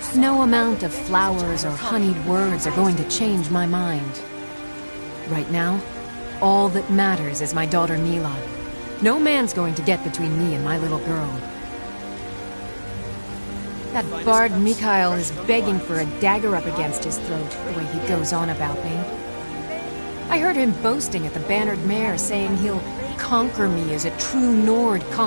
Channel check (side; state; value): both; inverted; correlation -1.00